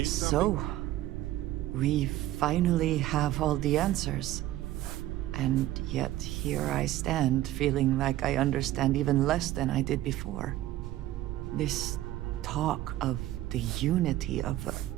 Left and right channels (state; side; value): quieter; left; 14.8 dB